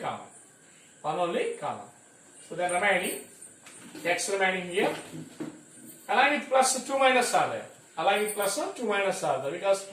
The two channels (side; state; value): both; identical; correlation 1.00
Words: 1 only common. So then remaining, x remaining here. Along with plus 2 minus are there. Along with plus 2 minus are there, because